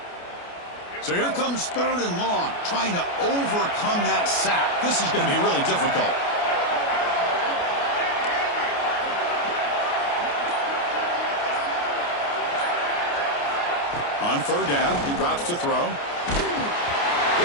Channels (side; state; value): right; late; 29 ms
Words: So here comes 3rd and long, trying to overcome that sack. This is going to be really difficult. On 3rd down, he drops to throw.